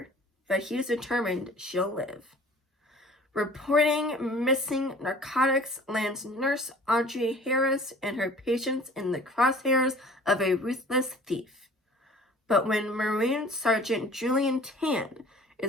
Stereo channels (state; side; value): normal; both; correlation 0.48